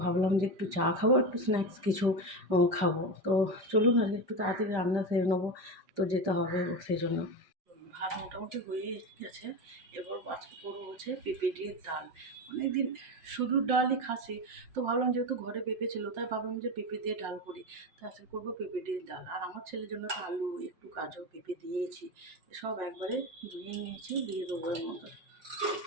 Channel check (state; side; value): late; left; 5.1 ms